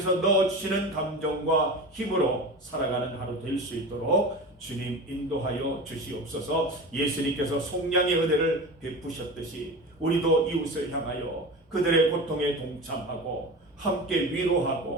넣어주시는 감정과 힘으로 살아가는 하루 될 수 있도록 주님 인도하여 주시옵소서. 예수님께서 속량의 은혜를 베푸셨듯이 우리도 이웃을 향하여 그들의 고통에 동참하고 함께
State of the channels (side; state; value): both; normal; correlation 0.30